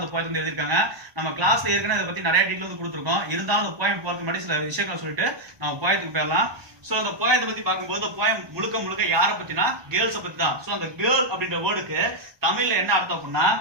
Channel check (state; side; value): late; left; 1.2 ms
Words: அந்த போயத்தை வந்து எழுதியிருக்காங்க. நம்ம கிளாஸ்ல ஏற்கனவே இதை பத்தி நிறைய டீட்டெயில் வந்து கொடுத்துருக்கோம். இருந்தாலும் அந்த போயம் போறதுக்கு முன்னாடி சில விஷயங்களை சொல்லிட்டு நம்ம போயத்துக்கு போயிடலாம். சோ அந்த போயத்தை பத்தி பார்க்கும்போது போயம் முழுக்க யாரை பத்தினா கேர்ள்ஸை பத்தி தான். சோ அந்த கேர்ள் அப்படின்ற வேர்டுக்கு தமிழ்ல என்ன அர்த்தம் அப்படின்னா